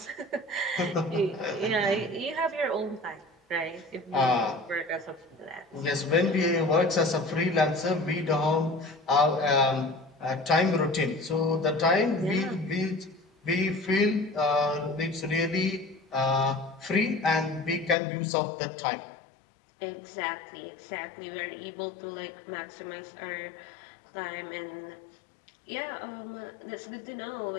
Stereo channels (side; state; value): right; drops out; at 17.9 s